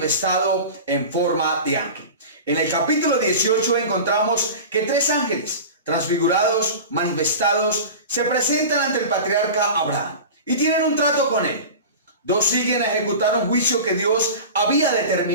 en forma de ángel. En el capítulo 18 encontramos que 3 ángeles transfigurados, manifestados, se presentan ante el patriarca Abraham y tienen un trato con él. 2 siguen a ejecutar un juicio que Dios había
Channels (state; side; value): inverted; both; correlation -0.32